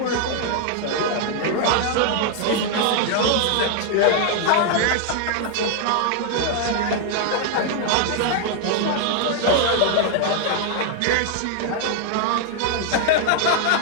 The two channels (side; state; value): both; different; correlation 0.00